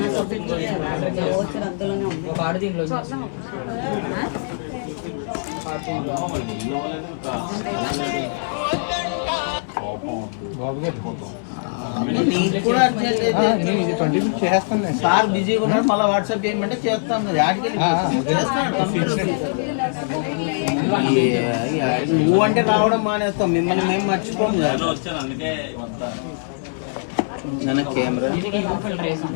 సార్ బిజీగా ఉన్నాడు, మళ్ళీ వాట్సాప్ చేయమంటే చేస్తాం. నువ్వు అంటే రావడం మానేస్తాం, మిమ్మల్ని మేము మర్చిపోము కదా. మన కెమెరా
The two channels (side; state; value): right; silent; 58 dB below the other